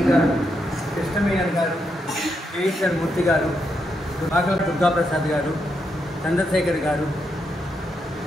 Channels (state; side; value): normal; both; correlation 0.81